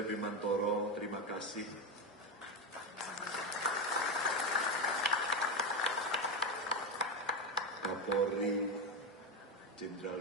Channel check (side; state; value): both; normal; correlation 0.12